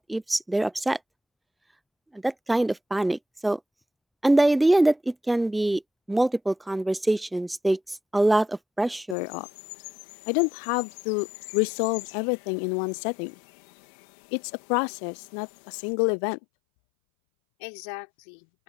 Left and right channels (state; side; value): drops out; right; at 9.2 s